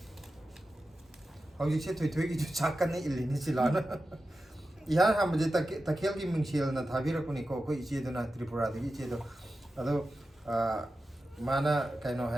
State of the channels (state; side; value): normal; both; correlation 0.92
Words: Hau jik se thui ki jo chakkan ni ilini silana. Ihan ham je takhel ki mingsil na thabira kuni ko iche do na Tripura de iche do. Ado mana kaino